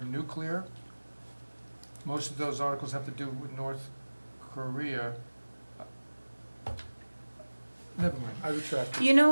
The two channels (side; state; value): both; inverted; correlation -1.00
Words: nuclear. Most of those articles have to do with North Korea. Never mind, I retract it. You know